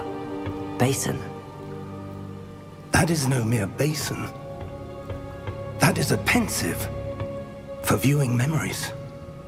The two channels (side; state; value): both; identical; correlation 1.00